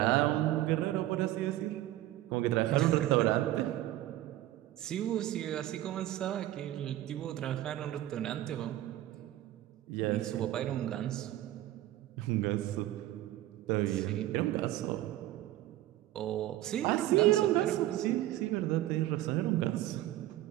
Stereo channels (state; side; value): quieter; left; 14.6 dB